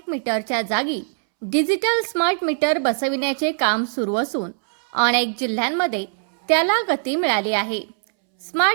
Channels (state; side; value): silent; left; 65 dB below the other